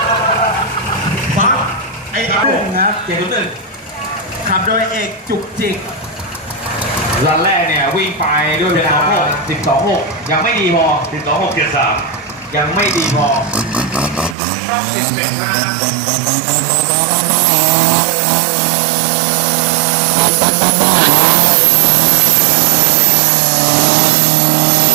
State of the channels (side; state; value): left; drops out; at 14.4 s